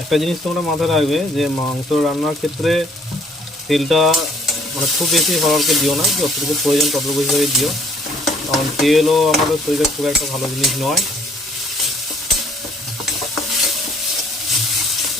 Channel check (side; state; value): both; normal; correlation 0.62